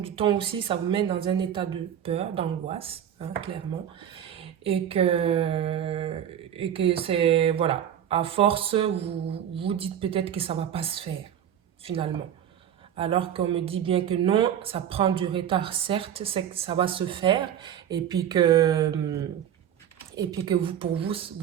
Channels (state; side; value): quieter; left; 9.7 dB